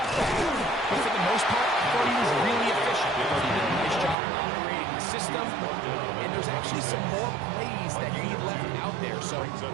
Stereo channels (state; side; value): drops out; left; at 4.2 s